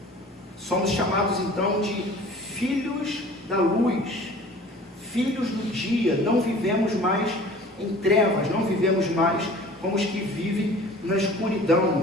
Somos chamados então de filhos da luz, filhos do dia. Não vivemos mais em trevas, não vivemos mais como os que vivem na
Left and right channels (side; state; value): both; normal; correlation 0.45